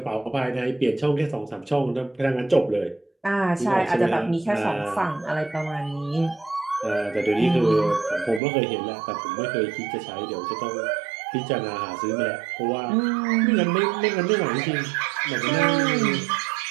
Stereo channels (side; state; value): left; drops out; at 8.4 s